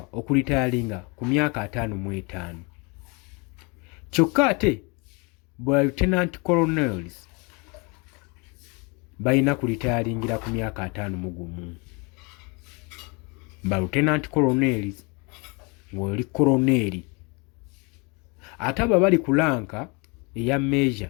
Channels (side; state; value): right; quieter; 30.7 dB